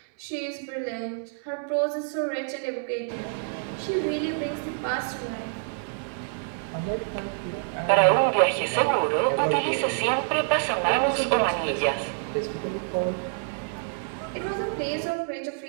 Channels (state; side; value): silent; left; 60 dB below the other